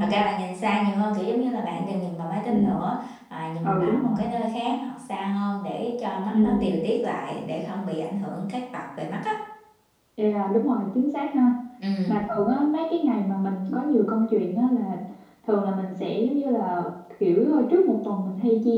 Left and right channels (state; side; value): identical; both; correlation 1.00